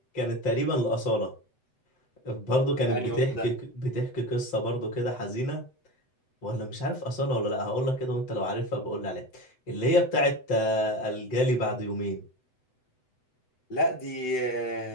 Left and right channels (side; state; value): right; late; 7.9 ms